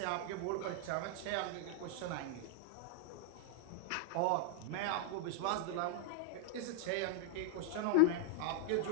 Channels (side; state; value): both; different; correlation 0.00